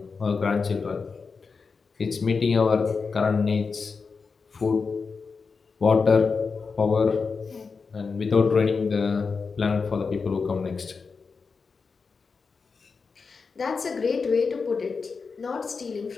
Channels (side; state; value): right; quieter; 4.9 dB